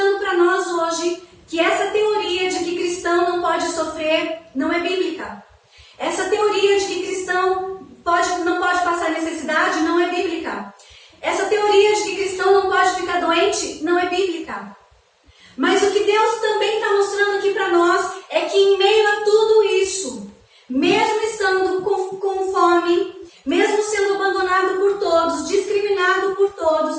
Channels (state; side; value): identical; both; correlation 1.00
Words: para nós hoje que essa teoria de que cristão não pode sofrer não é bíblica. Essa teoria de que cristão não pode passar necessidade não é bíblica. Essa teoria de que cristão não pode ficar doente não é bíblica. Mas o que Deus também está mostrando aqui para nós é que em meio a tudo isso, mesmo estando com fome, mesmo sendo abandonado por todos, discriminado por